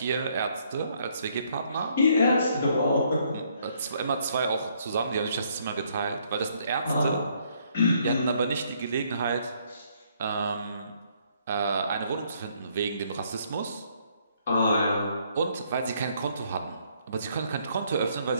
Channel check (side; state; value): both; inverted; correlation -0.68